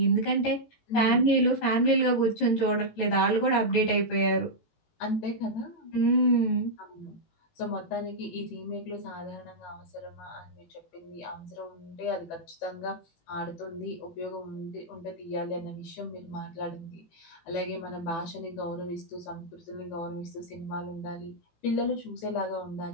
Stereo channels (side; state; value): right; late; 18 ms